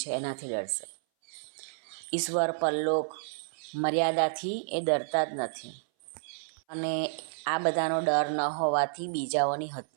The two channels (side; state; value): left; silent; 58 dB below the other